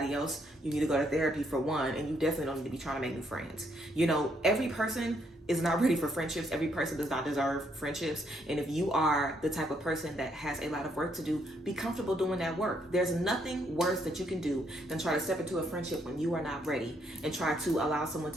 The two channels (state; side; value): normal; both; correlation 0.73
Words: else, you need to go to therapy for one, and you definitely don't need to be trying to make new friends. You know, every person is not ready for friendships. Every person does not deserve friendships. And if you are the type of person that has a lot of work to do, be comfortable doing that work. There's nothing worse that you can do than try to step into a friendship when you are not ready, and try to allow someone